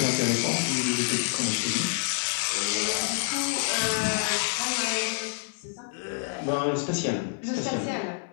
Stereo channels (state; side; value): silent; right; 60 dB below the other